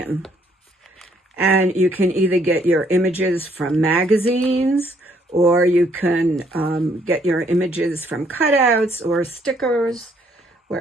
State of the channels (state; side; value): normal; both; correlation 0.67